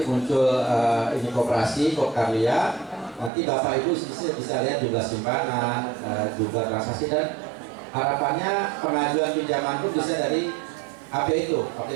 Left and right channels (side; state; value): left; drops out; at 3.3 s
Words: muncul ini koperasi, Kopkarya. Nanti Bapak Ibu bisa lihat jumlah simpanan, jumlah transaksi, dan harapannya pengajuan pinjaman pun bisa dari HP itu,